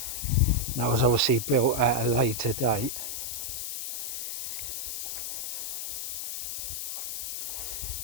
That was obviously built at a later date.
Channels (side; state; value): left; noise; hiss, 4 dB below the sound